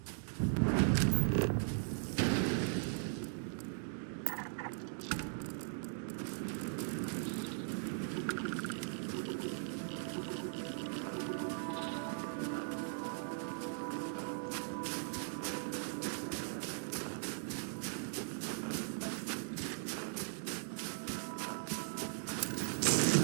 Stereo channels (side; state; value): left; silent; digital silence